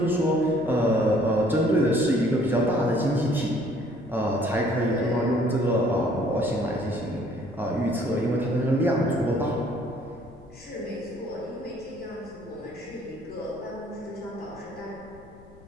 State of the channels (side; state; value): left; noise; rumble, 23 dB below the sound